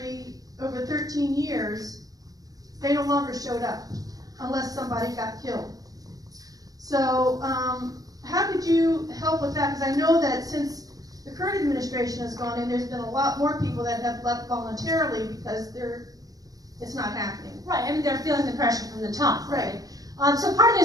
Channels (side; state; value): left; late; 0.18 ms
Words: over 13 years, they no longer showed up unless somebody got killed. So how could you help with that? Because I know that since the current administration has gone in, there's been a lot more people that have left voluntarily because it's not happening. Right, I mean, they're feeling the pressure from the top, Right. So part of it